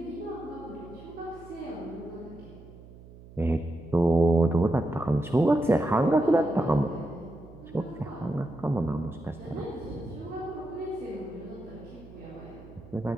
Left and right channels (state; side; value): noise; right; hum, 19 dB below the sound